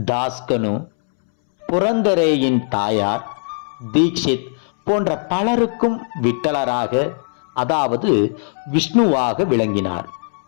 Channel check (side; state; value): right; silent; 65 dB below the other